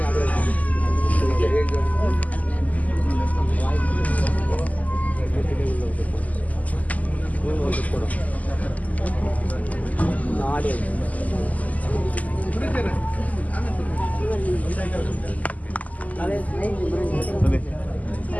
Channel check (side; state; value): right; late; 0.075 ms